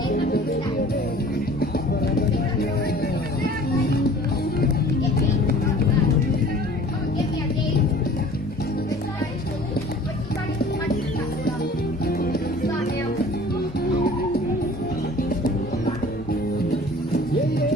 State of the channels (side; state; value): both; normal; correlation 0.47